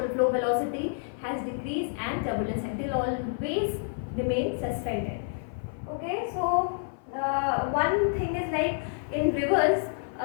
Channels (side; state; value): right; silent; 56 dB below the other